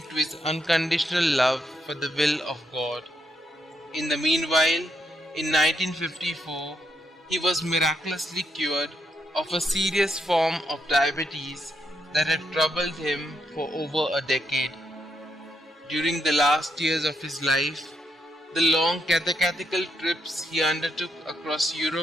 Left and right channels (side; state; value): both; normal; correlation 0.79